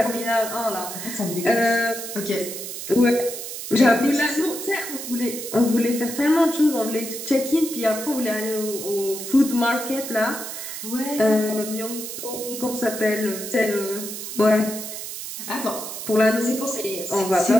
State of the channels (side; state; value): right; noise; hiss, 8 dB below the sound